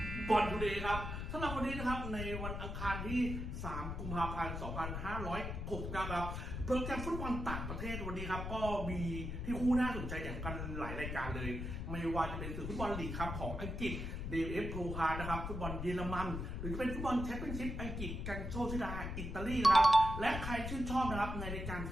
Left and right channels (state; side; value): noise; left; rumble, 4 dB below the sound